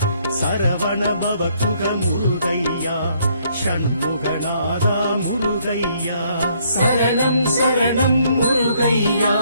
சரவண பவகுக முருகையா ஷண்முகநாதா முருகையா சரணம் சரணம் முருகையா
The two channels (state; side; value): inverted; both; correlation -0.67